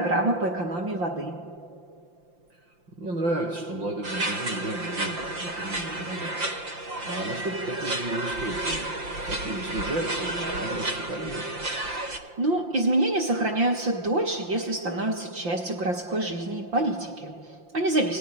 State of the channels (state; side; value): late; left; 5.8 ms